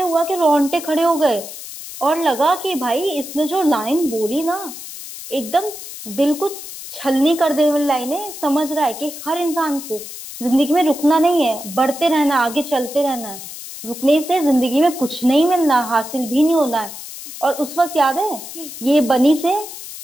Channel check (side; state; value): left; noise; hiss, 12 dB below the sound